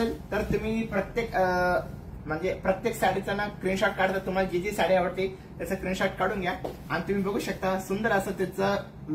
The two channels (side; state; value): both; identical; correlation 1.00